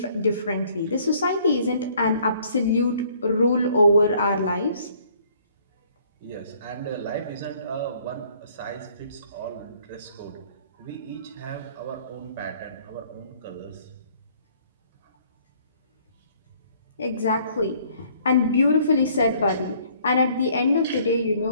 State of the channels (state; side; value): inverted; both; correlation -0.60